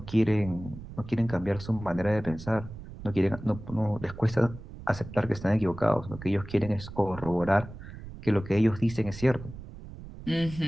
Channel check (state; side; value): noise; right; rumble, 13 dB below the sound